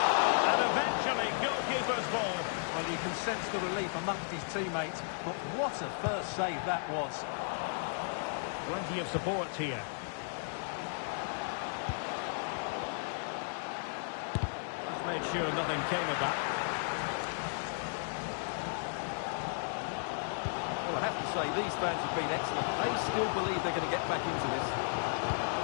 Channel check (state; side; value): silent; right; digital silence